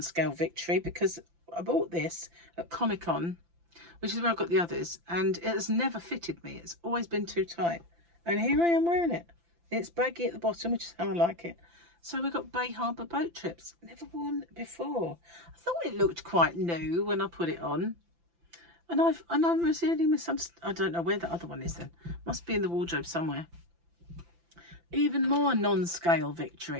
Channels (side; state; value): left; late; 5.9 ms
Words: victory, because I bought this at Comic-Con, which is where I got the others, and it has never fitted me. It's always been too tight. And here I am wearing it. It's baggy at the bottom, which is how I like it. So we've got Bay Harbour boat trips. Never worn it before. I thought it looked quite new when I put it on. And I really misunderstood. I don't know where the other one is then. Must be in the wardrobe somewhere. Even more non-scale